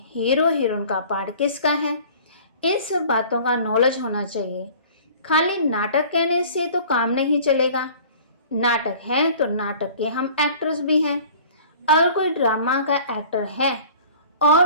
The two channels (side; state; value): both; inverted; correlation -0.47